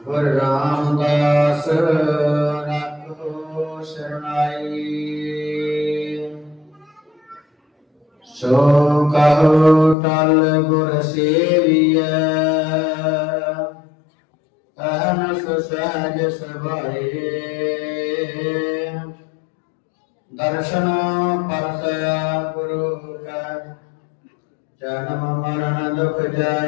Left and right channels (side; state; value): right; drops out; at 10.0 s